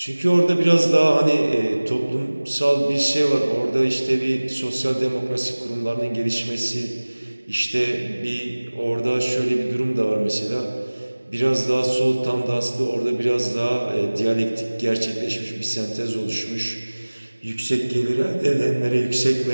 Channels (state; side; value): inverted; both; correlation -1.00